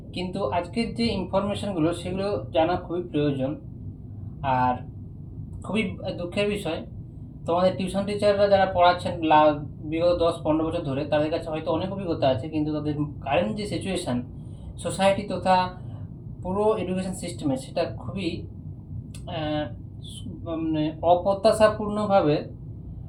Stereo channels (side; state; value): both; identical; correlation 1.00